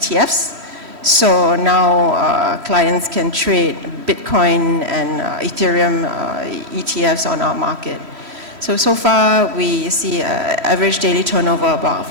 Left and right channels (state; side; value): late; left; 3.1 ms